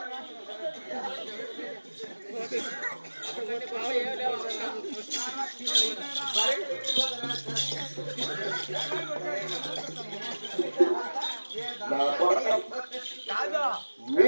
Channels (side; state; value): both; inverted; correlation -1.00